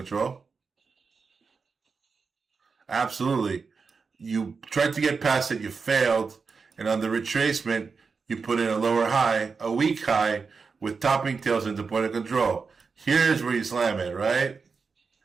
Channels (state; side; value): quieter; left; 5.0 dB